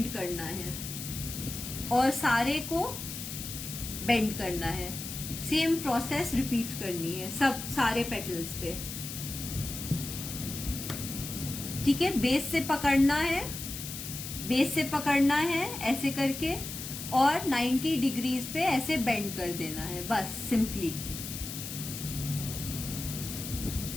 करना है और सारे को bend करना है. सेम प्रोसेस रिपीट करनी है सब सारे पेटल्स पे. ठीक है, बेस से पकड़ना है ऐसे करके, और 90 डिग्रीज पे ऐसे बेंड कर देना है, बस सिंपली.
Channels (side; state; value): left; noise; hiss, 8 dB below the sound